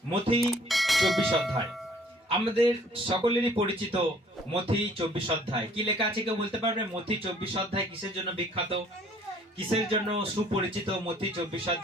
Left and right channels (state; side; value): normal; both; correlation 0.58